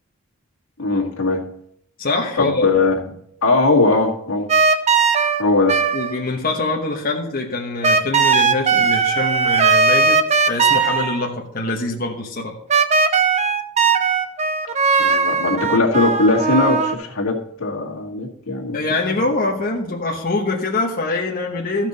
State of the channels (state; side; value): normal; both; correlation -0.10